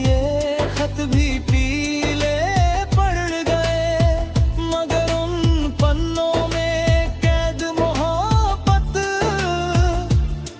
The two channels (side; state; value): both; identical; correlation 1.00